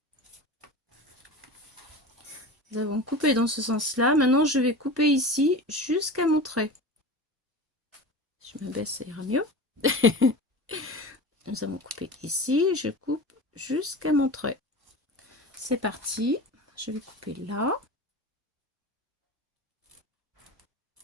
Nous avons coupé dans ce sens-là. Maintenant, je vais couper ici jusqu'à mon trait. Si je me baisse, ça ira mieux. Nous avons coupé ici. Je coupe jusqu'à mon trait. C'est parti. Je vais couper là.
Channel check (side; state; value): both; normal; correlation 0.31